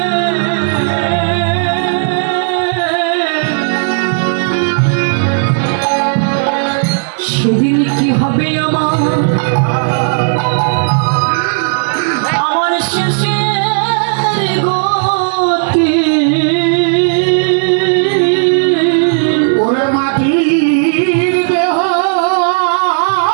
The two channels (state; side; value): silent; left; digital silence